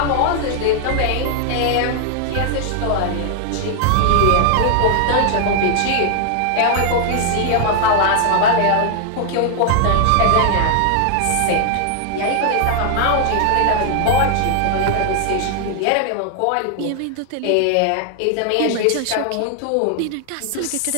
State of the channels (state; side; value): different; both; correlation 0.00